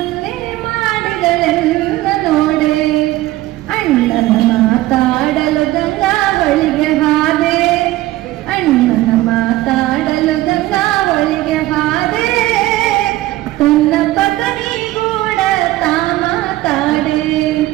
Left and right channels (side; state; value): left; quieter; 16.7 dB